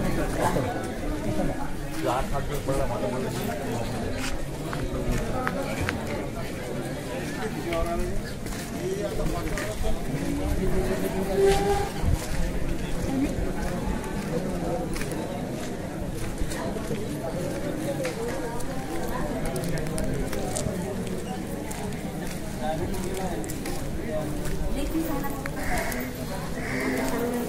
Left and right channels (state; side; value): identical; both; correlation 1.00